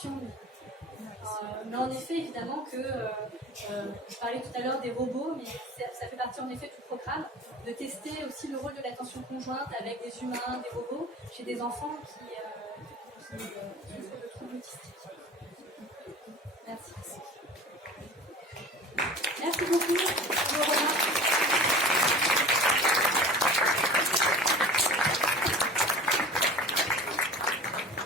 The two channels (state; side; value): normal; both; correlation 0.39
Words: Mais en effet, évidemment que je parlais tout à l'heure des robots, mais ça fait partie en effet du programme de tester aussi le rôle de l'attention conjointe avec des humains, des robots, chez des enfants qui souffrent de troubles autistiques. Merci. Merci beaucoup.